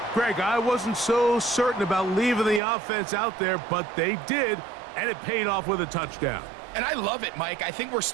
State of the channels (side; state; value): left; drops out; at 2.6 s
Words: Greg, I wasn't so certain about leaving the offense out there, but they did, and it paid off with a touchdown. And I love it, Mike. I think we're